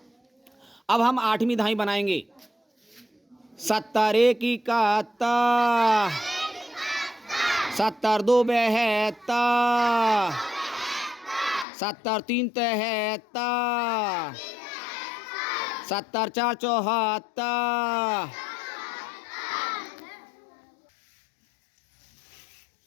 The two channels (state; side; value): drops out; right; at 11.7 s